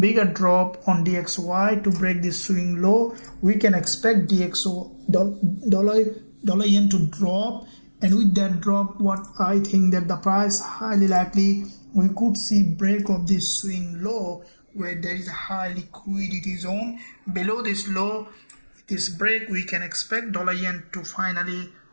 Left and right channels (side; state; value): both; inverted; correlation -1.00